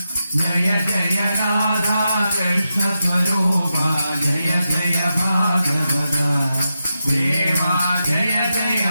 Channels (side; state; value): both; inverted; correlation -0.88